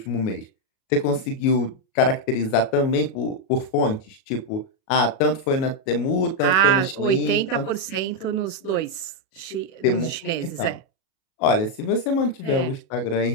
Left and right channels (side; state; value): right; late; 37 ms